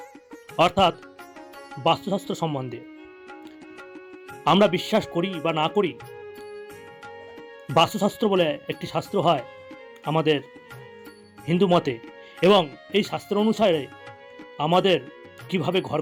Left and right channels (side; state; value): both; identical; correlation 1.00